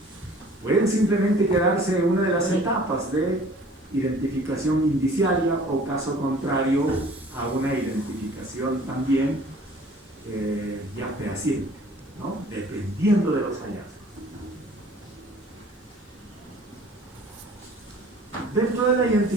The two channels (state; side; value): normal; both; correlation 0.51